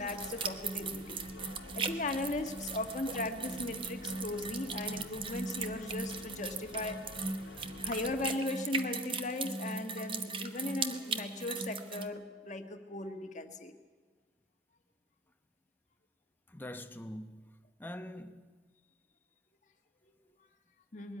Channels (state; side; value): normal; both; correlation 0.35